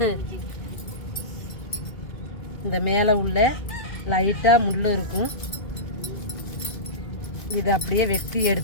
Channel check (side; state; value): right; late; 2.6 ms